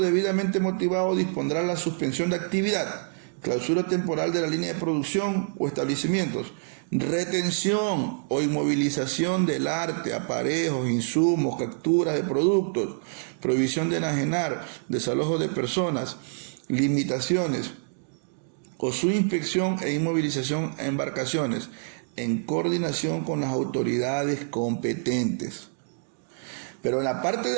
debidamente motivado, dispondrá la suspensión de actividad, clausura temporal de la línea de producción o establecimientos, retención o inmovilización del arte, aparejos, insumos, capturas de productos, prohibición de enajenar, desalojo de personas, limitaciones o su inspección e inmovilización a embarcaciones en coordinación con las autoridades competentes. Pero en la parte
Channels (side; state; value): left; silent; digital silence